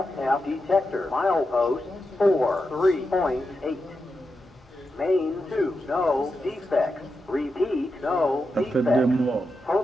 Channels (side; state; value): both; normal; correlation 0.88